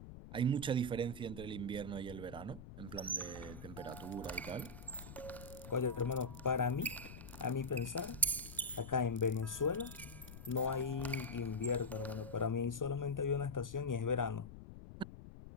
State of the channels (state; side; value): noise; left; rumble, 13 dB below the sound